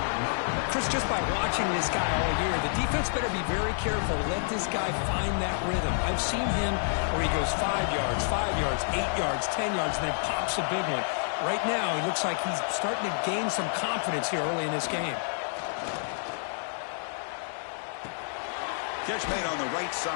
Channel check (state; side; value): silent; right; digital silence